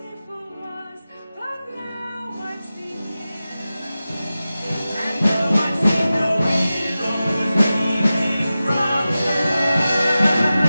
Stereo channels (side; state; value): both; inverted; correlation -0.94